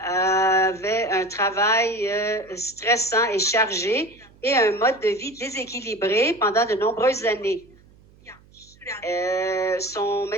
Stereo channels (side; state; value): right; noise; hum, 28 dB below the sound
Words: un travail stressant et chargé et un mode de vie déséquilibré pendant de nombreuses années. Son